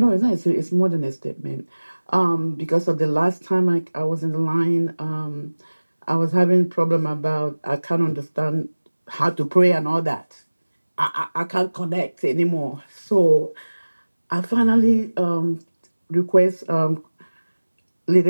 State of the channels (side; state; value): both; inverted; correlation -1.00